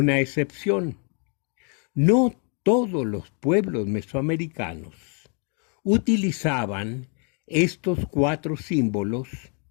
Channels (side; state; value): right; quieter; 39.1 dB